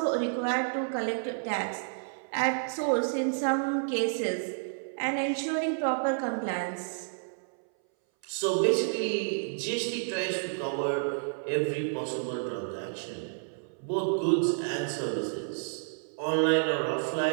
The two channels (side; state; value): left; silent; 58 dB below the other